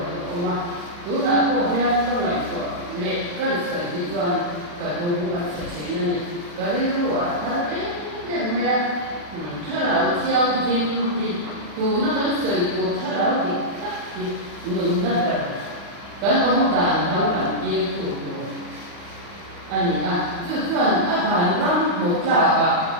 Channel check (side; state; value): left; late; 40 ms